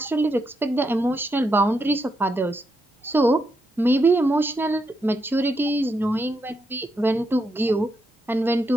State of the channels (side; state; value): both; normal; correlation 0.81